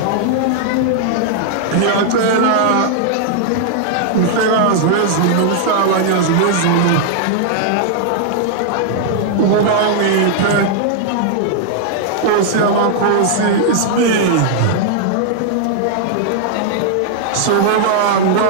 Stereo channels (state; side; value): different; both; correlation -0.01